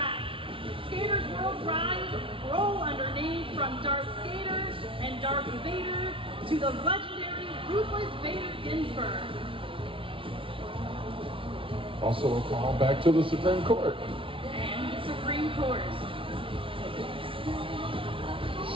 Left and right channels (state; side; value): late; left; 0.25 ms